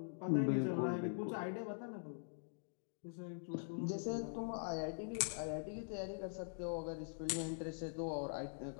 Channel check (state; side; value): silent; right; digital silence